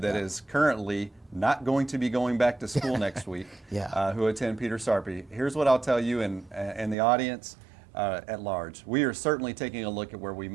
is currently not going to be going back to school next week, who attend Peter Sarpy, here's what I'll tell you and the audience at large. We are certainly taking a look at where we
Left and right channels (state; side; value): drops out; left; at 7.0 s